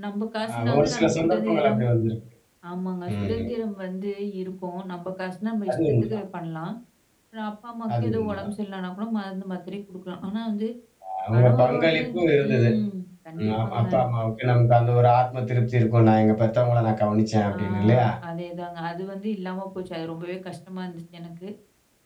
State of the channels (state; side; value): identical; both; correlation 1.00